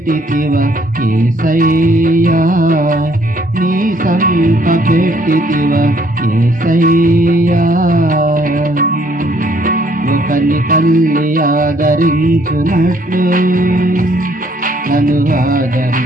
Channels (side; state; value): both; normal; correlation 0.65